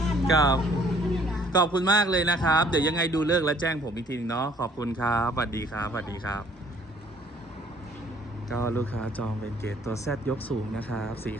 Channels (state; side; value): normal; both; correlation 0.59